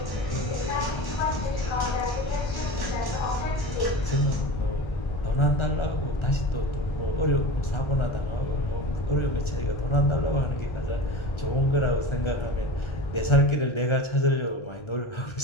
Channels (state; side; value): late; right; 1.3 ms